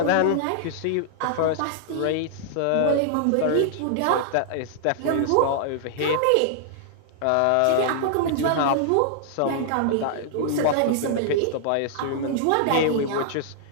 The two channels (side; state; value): both; different; correlation -0.01